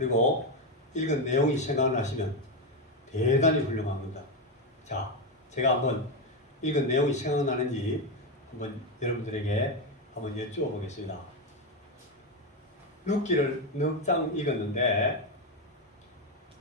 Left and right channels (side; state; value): both; normal; correlation 0.10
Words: 읽은 내용이 생각나시면 대단히 훌륭한 겁니다. 자, 제가 한번 읽은 내용이 생각나는지 한번 여러분들에게 한번 여쭈어 보겠습니다. 룻기를 넉 장 읽었는데